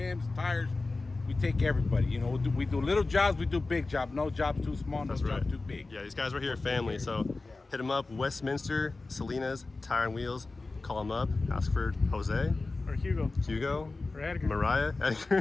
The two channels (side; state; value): right; quieter; 3.5 dB